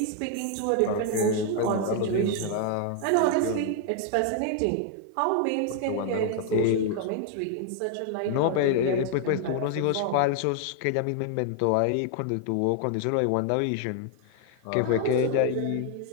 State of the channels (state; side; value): different; both; correlation 0.00